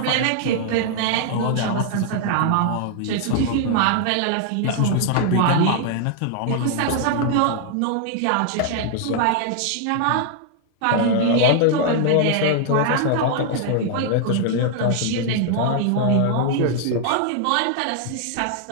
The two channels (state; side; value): different; both; correlation 0.00